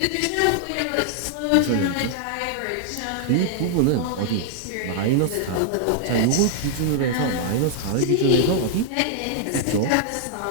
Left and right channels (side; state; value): both; different; correlation -0.01